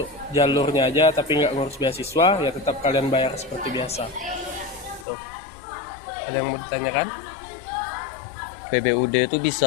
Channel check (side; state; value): right; drops out; at 5.1 s